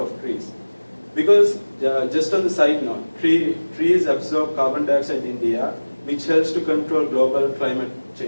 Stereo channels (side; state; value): both; inverted; correlation -1.00